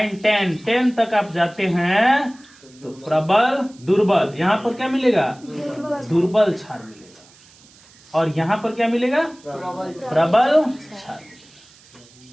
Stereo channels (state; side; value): noise; right; hiss, 26 dB below the sound